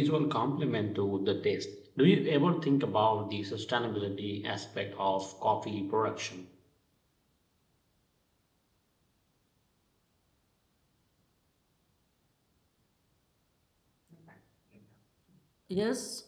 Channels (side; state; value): both; identical; correlation 1.00